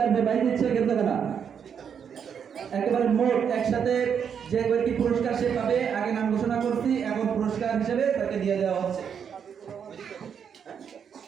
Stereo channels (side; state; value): left; quieter; 7.5 dB